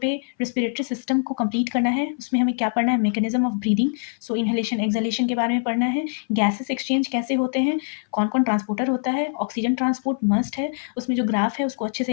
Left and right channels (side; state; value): right; silent; 59 dB below the other